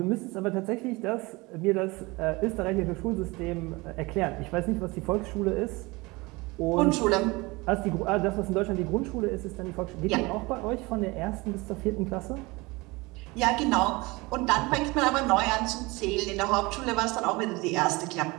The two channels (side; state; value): left; quieter; 23.7 dB